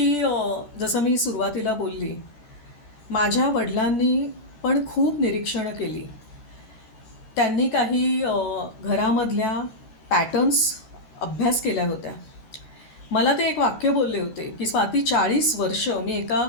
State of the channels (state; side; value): late; right; 14 ms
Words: जसं मी सुरुवातीला बोलली, माझ्या वडिलांनी पण खूप निरीक्षणं केली. त्यांनी काही घरामधल्या पॅटर्न्स अभ्यास केल्या होत्या. मला ते एक वाक्य बोलले होते की स्वाती 40 वर्ष मी एका